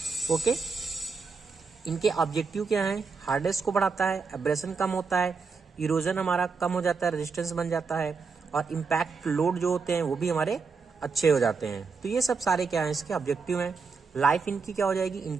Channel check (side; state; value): left; quieter; 5.0 dB